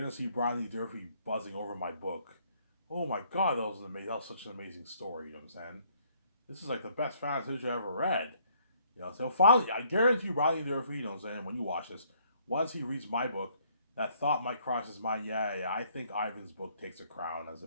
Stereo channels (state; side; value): inverted; both; correlation -0.65